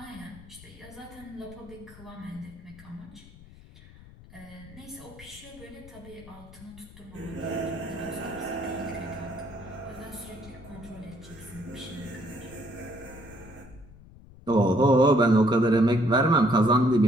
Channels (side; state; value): left; noise; rumble, 20 dB below the sound